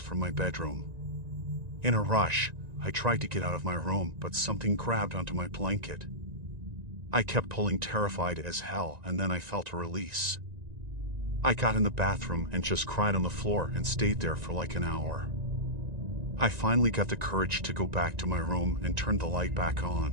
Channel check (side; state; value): left; late; 1.9 ms